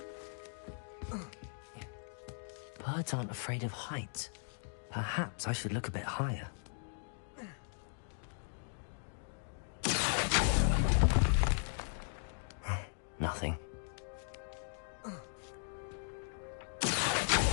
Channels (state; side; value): silent; right; digital silence